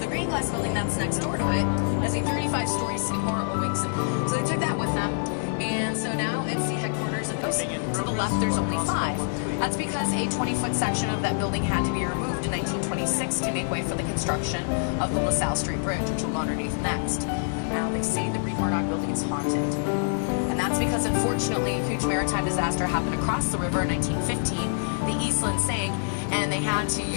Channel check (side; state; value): right; silent; digital silence